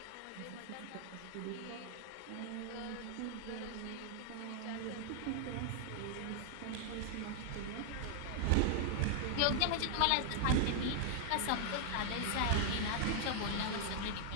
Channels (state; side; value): different; both; correlation 0.00